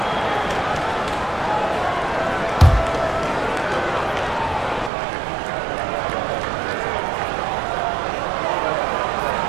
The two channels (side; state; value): left; drops out; at 4.9 s